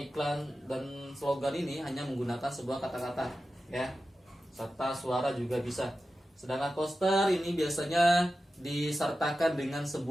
dan slogan ini hanya menggunakan sebuah kata-kata ya, serta suara juga bisa. Sedangkan poster ini biasanya disertakan dengan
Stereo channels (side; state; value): both; normal; correlation 0.93